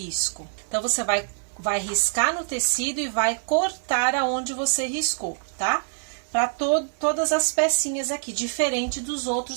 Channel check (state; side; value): silent; left; 61 dB below the other